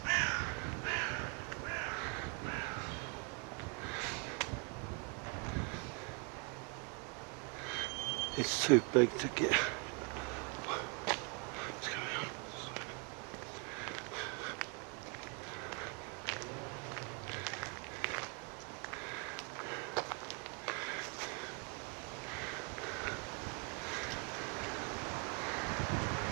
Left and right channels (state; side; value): quieter; left; 32.5 dB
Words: It's too big to get.